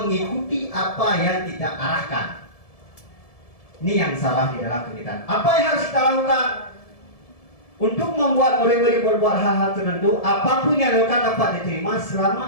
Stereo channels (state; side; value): late; right; 1.7 ms